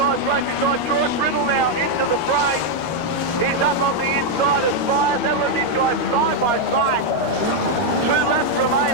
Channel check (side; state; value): right; late; 13 ms